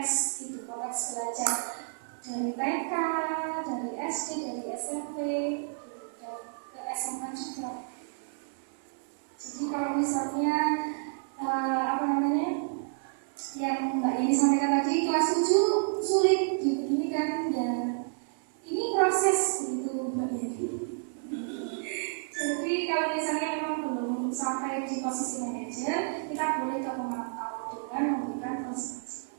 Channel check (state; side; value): silent; left; digital silence